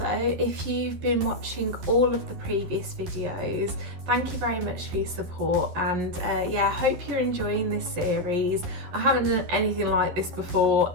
if you've been watching all of the previous videos, thank you very much for your support, and yeah, I hope you're enjoying this series. I haven't done anything like this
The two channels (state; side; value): late; left; 12 ms